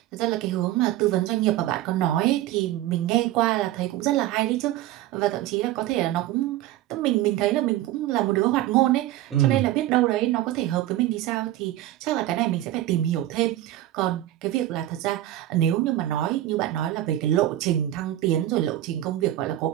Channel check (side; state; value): left; quieter; 14.3 dB